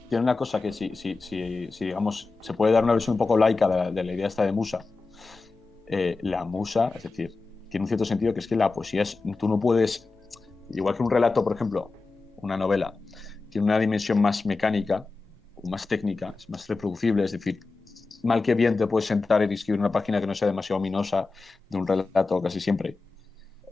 tiene una cosa que si digamos, se puede dar una versión un poco laica de la idea esta de musa. La musa, es decir, tiene un cierto sentido que es que la poesía tú no puedes, igual que un relato, por ejemplo, una novela, tiene una dimensión más mecánica o más técnica, es más reproducible, es decir, mal que bien te puedes sentar y escribir una página que no sea demasiado ominosa de un relato casi siempre.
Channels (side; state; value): right; quieter; 3.9 dB